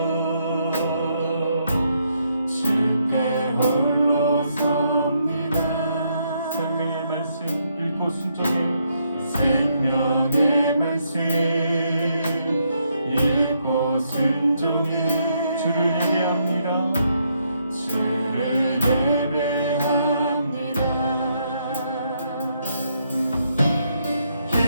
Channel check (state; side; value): inverted; both; correlation -0.75